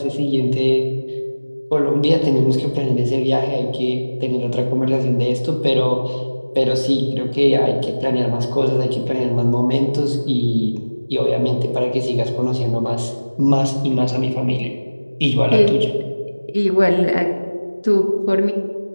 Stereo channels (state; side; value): inverted; both; correlation -1.00